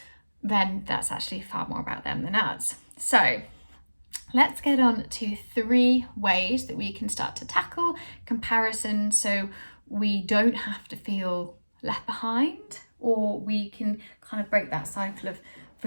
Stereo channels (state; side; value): inverted; both; correlation -1.00